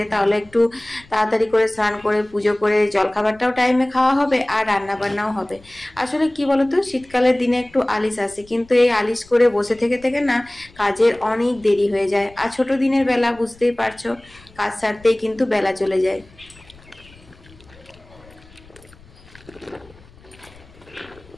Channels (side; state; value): left; noise; rumble, 25 dB below the sound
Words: তাহলে একটু তাড়াতাড়ি করে স্নান করে পুজো করে জলখাবারটাও টাইমে খাওয়া হবে আর রান্না বান্নাও হবে। আসলে কি বলতো, শীতকালের দিনে একটু আলিস আসে, কিন্তু এই আলিশ করে বসে থেকে থেকে না কাজের অনেক দেরি হয়ে যায়। আর ছোট দিনের বেলা বুঝতেই পারছো, কাজ সারতেই কিন্তু বেলা চলে যায়।